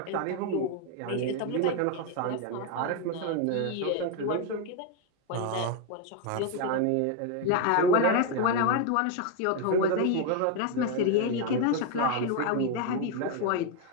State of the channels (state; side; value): different; both; correlation 0.01